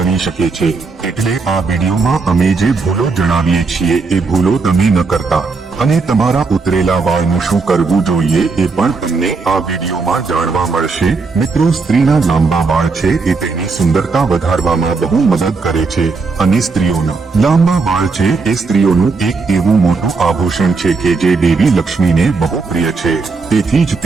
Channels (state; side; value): quieter; left; 4.3 dB